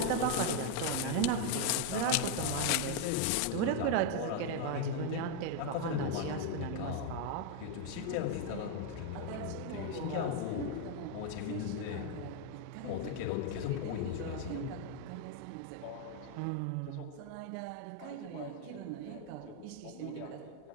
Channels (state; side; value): different; both; correlation 0.01